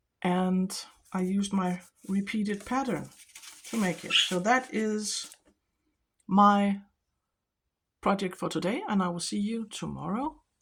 And I used my repeated pattern to make it. So that is my project for today, and I will see you tomorrow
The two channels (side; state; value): both; identical; correlation 1.00